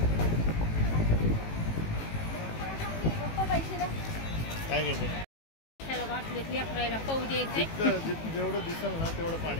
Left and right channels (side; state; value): right; late; 18 ms